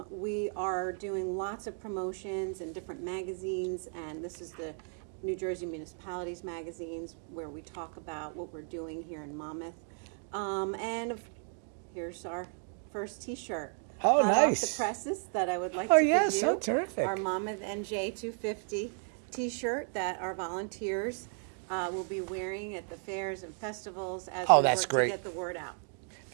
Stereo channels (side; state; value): left; silent; 55 dB below the other